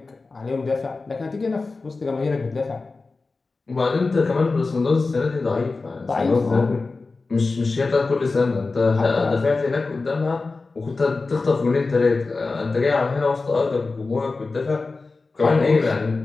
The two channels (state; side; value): quieter; right; 3.8 dB